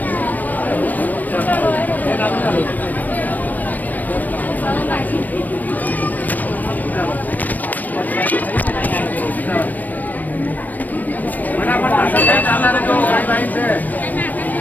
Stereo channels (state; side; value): late; right; 0.084 ms